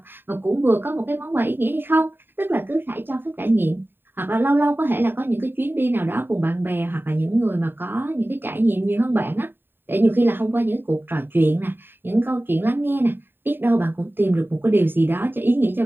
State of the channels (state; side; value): late; left; 0.097 ms